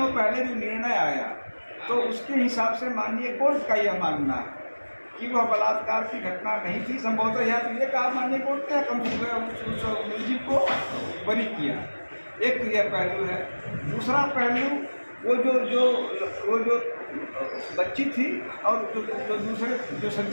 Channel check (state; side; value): inverted; both; correlation -1.00